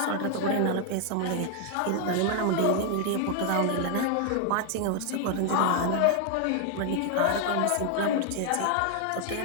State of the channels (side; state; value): both; different; correlation 0.00